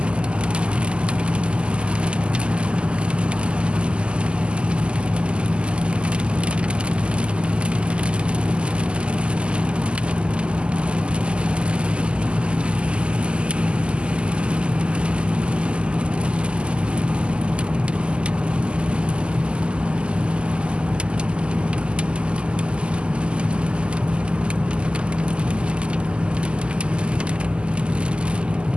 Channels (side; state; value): left; late; 0.051 ms